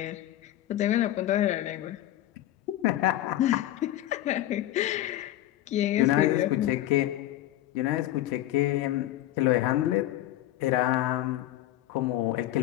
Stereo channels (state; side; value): quieter; right; 14.1 dB